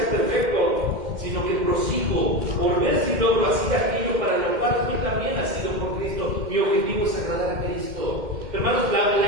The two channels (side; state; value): left; late; 2.1 ms